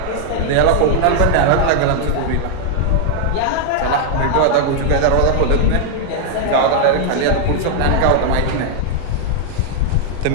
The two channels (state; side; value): different; both; correlation -0.01